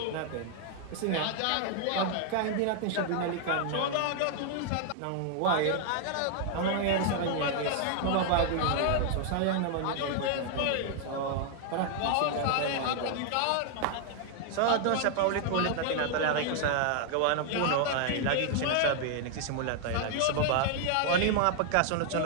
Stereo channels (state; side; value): different; both; correlation 0.00